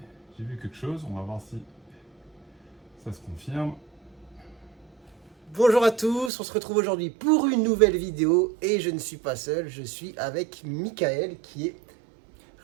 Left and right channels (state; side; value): drops out; left; at 6.3 s